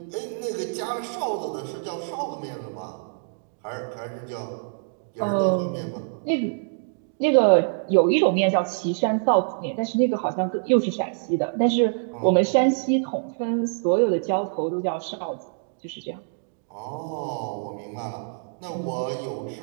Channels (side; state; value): left; silent; digital silence